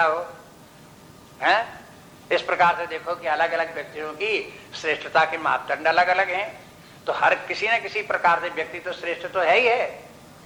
हो, हैं? इस प्रकार से देखो कि अलग अलग व्यक्तियों की श्रेष्ठता के मापदंड अलग अलग हैं। तो हर किसी न किसी प्रकार से व्यक्ति तो श्रेष्ठ तो है ही है।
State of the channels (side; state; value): both; identical; correlation 1.00